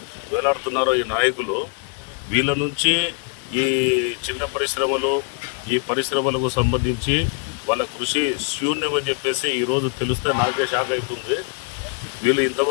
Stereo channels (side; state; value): right; quieter; 36.7 dB